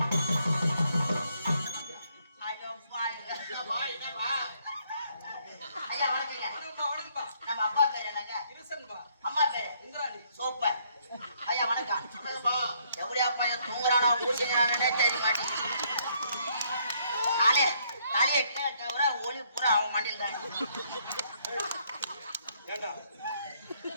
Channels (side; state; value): both; inverted; correlation -0.69